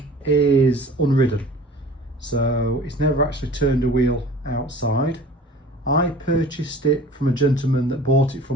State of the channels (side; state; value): both; normal; correlation 0.44